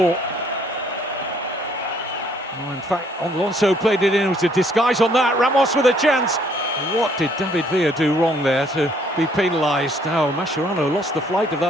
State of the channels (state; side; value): normal; both; correlation 0.64